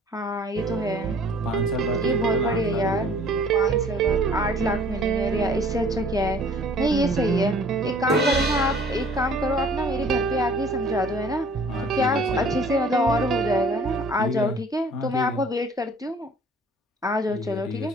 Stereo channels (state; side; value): normal; both; correlation 0.53